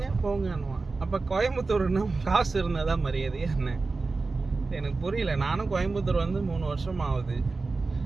போங்கன்னுவான். அப்போ கோயம்புத்தூர்னா காசு இருந்தால் தான் மரியாதையா என்ன? எனக்கு புரியல. நானும் கோயம்புத்தூர் வந்து 3 வருஷம் ஆகுது.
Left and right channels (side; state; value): left; quieter; 3.8 dB